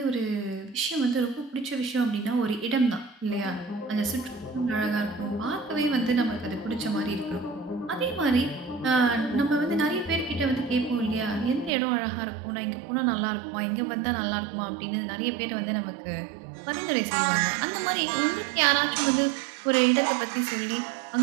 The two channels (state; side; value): drops out; left; at 11.7 s